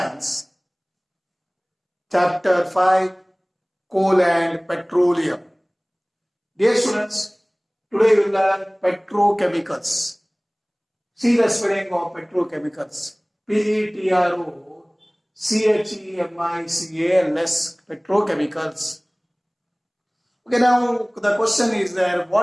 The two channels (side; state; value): both; identical; correlation 1.00